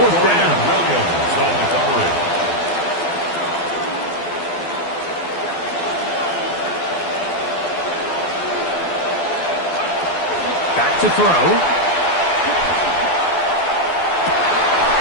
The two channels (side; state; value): right; late; 12 ms